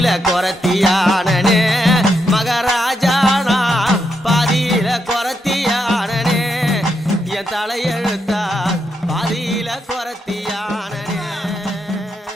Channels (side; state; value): both; normal; correlation 0.81